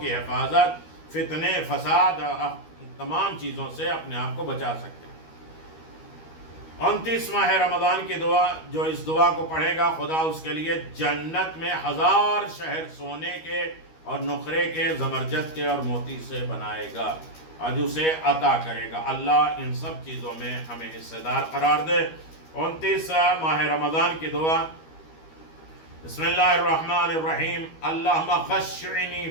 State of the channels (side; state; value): right; late; 13 ms